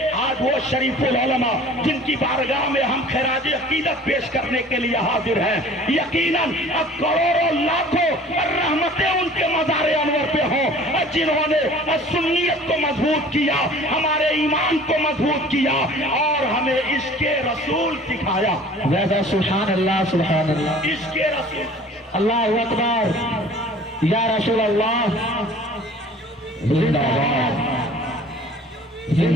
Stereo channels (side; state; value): both; normal; correlation 0.47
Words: آج وہ شریف العلماء جن کی بارگاہ میں ہم خراج عقیدت پیش کرنے کے لیے حاضر ہیں، یقیناً کروڑوں لاکھوں رحمتیں ان کے مزار انور پہ ہوں، جنہوں نے سنیت کو مضبوط کیا، ہمارے ایمان کو مضبوط کیا اور ہمیں عشق رسول سکھایا۔ سبحان اللہ سبحان اللہ، عشق رسول، اللہ اکبر، یا رسول اللہ زندہ باد